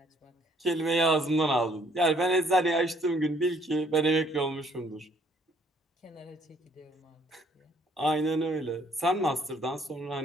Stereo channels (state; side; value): normal; both; correlation 0.63